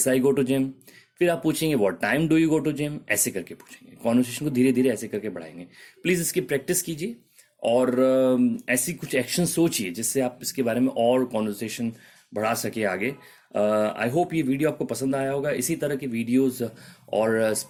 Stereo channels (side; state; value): both; identical; correlation 1.00